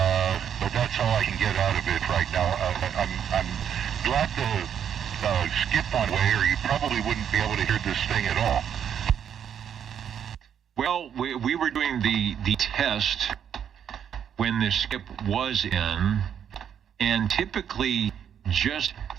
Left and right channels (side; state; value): left; quieter; 8.7 dB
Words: But that's all I can get out of it right now. I'm glad to skip one way, or you probably wouldn't be able to hear this thing at all. Well, we were doing the test when the skip was in, and typically just